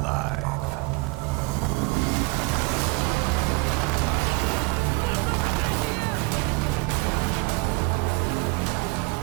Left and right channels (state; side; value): quieter; left; 25.2 dB